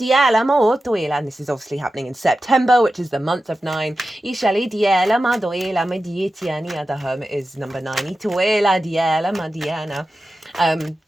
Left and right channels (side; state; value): both; normal; correlation 0.93